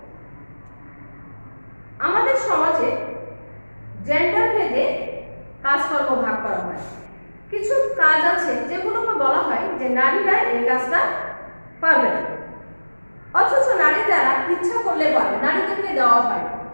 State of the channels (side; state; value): both; inverted; correlation -1.00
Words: আমাদের সমাজে জেন্ডার ভেদে কাজকর্ম ভাগ করা হয়। কিছু কাজ আছে যেগুলোকে বলা হয় যে নারীরা এই কাজটা পারবে না, অথচ নারী দ্বারা ইচ্ছা করলে পারবে, নারীদেরকে দেওয়া হয়।